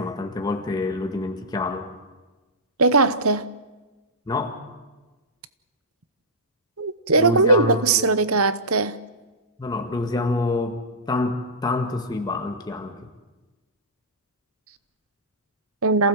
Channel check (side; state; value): both; normal; correlation -0.16